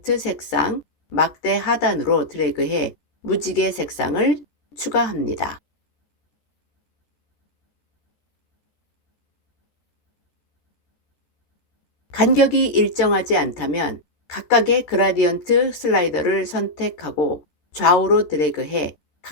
색상 막대 하단으로 드래그해 무지개 색상을 추가합니다. 간격이 일정하지 않다면 각각의 그라디언트 슬라이더를 선택하고 좌우로 드래그해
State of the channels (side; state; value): right; late; 13 ms